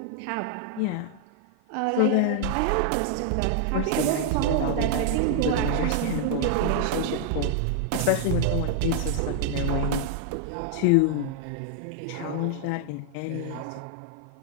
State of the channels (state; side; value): different; both; correlation 0.00